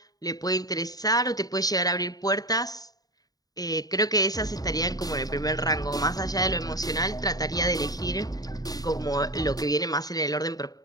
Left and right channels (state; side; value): late; right; 0.18 ms